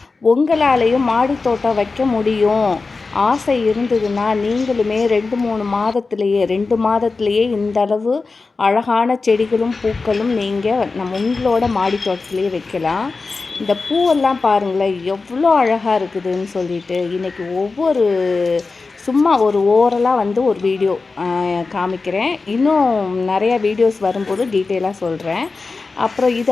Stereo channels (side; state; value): right; quieter; 4.0 dB